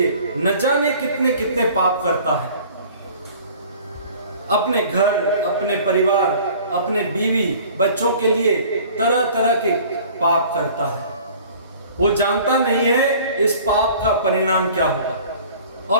न जाने कितने कितने पाप करता है। अपने घर, अपने परिवार, अपने बीवी बच्चों के लिए तरह तरह के पाप करता है। वो जानता नहीं है इस पाप का परिणाम क्या होगा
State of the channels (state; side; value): inverted; both; correlation -0.48